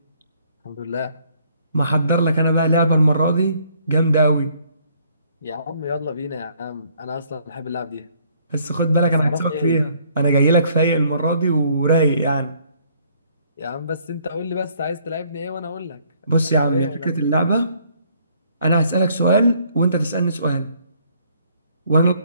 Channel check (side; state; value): both; inverted; correlation -0.64